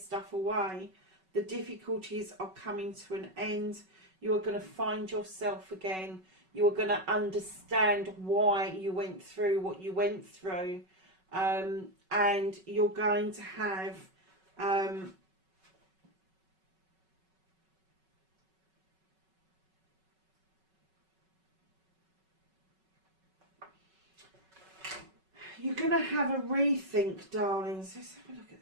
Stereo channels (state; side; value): late; left; 5.3 ms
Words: away, the difficulties are coming to an end. You are going to find yourself again. You are going to understand why you went through what you went through. And you're going to have you're going to have a rethink, darlings. Let's have a look at